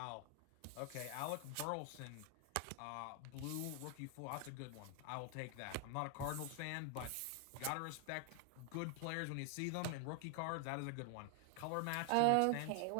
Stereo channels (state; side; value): different; both; correlation 0.00